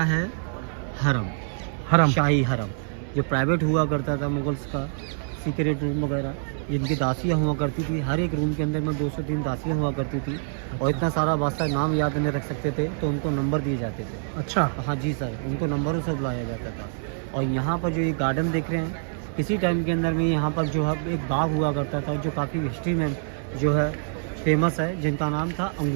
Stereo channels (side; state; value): left; silent; 61 dB below the other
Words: है हरम, शाही हरम, जो प्राइवेट हुआ करता था मुग़ल्स का, सीक्रेट रूम वगैरह, जिनकी दासियाँ हुआ करती थी। हर एक रूम के अंदर में 2 से 3 दासियाँ हुआ करती थी। और इतना सारा बादशाह नाम याद नहीं रख सकते थे, तो उनको नंबर दिए जाते थे। अच्छा। हाँ जी सर, उनको नंबरों से बुलाया जाता था। और यहाँ पर जो ये गार्डन देख रहे हैं, किसी टाइम के अंदर में यहाँ पर जो है एक बाग हुआ करता था, जो काफ़ी हिस्ट्री में जो है फेमस है, जिनका नाम था